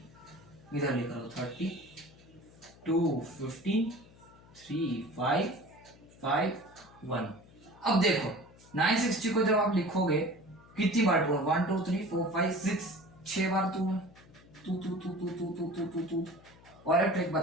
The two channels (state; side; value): noise; left; hum, 24 dB below the sound